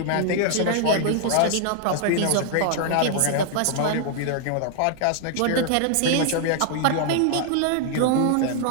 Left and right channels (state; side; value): different; both; correlation 0.00